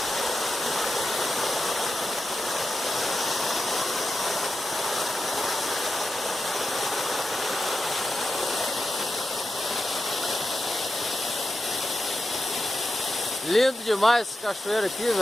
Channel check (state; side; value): normal; both; correlation 0.90